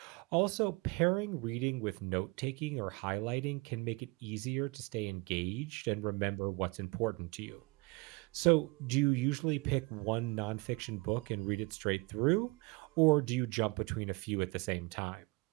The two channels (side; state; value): left; quieter; 25.9 dB